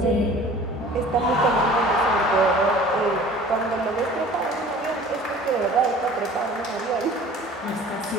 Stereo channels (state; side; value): normal; both; correlation 0.46